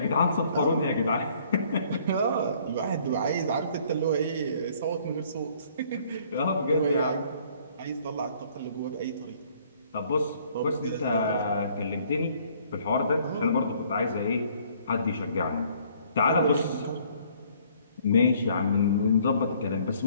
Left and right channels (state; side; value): inverted; both; correlation -0.60